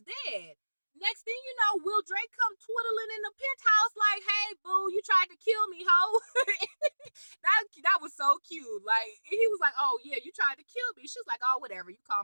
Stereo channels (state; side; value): inverted; both; correlation -1.00